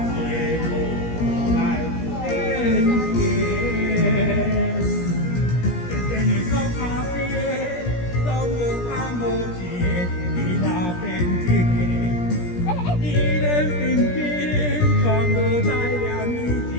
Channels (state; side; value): late; right; 17 ms